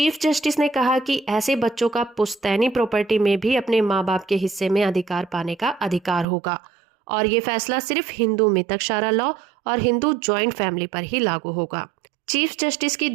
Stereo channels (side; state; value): left; drops out; at 6.2 s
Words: जस्टिस ने कहा कि ऐसे बच्चों का पुश्तैनी प्रॉपर्टी में भी अपने माँ बाप के हिस्से में अधिकार पाने का अधिकार होगा, और ये फैसला सिर्फ हिंदू मितकशारा लॉ और हिंदू ज्वाइंट फैमिली पर ही लागू होगा। चीफ जस्टिस की